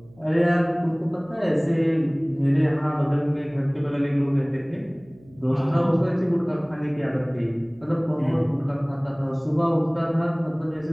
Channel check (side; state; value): right; noise; hum, 27 dB below the sound